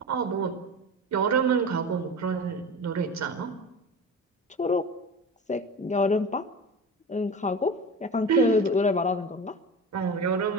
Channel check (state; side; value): normal; both; correlation 0.31